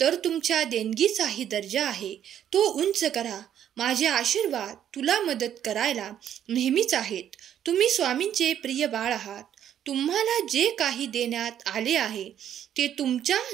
तुमच्या देणगीचाही दर्जा आहे, तो उंच करा. माझे आशीर्वाद तुला मदत करायला नेहमीच आहेत. तुम्ही स्वामींचे प्रिय बाळ आहात. तुम्हाला जे काही देण्यात आले आहे ते तुमच्या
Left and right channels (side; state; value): left; quieter; 10.1 dB